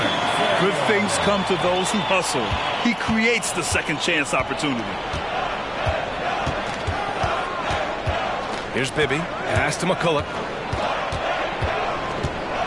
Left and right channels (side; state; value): both; identical; correlation 1.00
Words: Good things come to those who hustle. He creates the second chance opportunity. Here's Bibby. Pass to McCulloch.